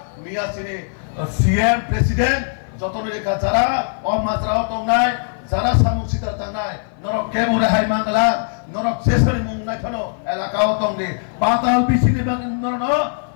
মিয়া সিনি সিএম প্রেসিডেন্ট যতন রেখা যারা অমাত্রা তংনাই যারা সামুসিতা তংনাই নরক কে মনে হাই মাংলা নরক শেষরি মুংনাই ফনো এলাকাও তংগে পাতাল বিছিনি বাংনরন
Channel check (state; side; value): silent; right; 57 dB below the other